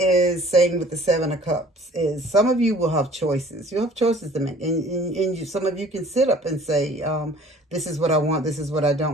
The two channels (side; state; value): both; normal; correlation 0.51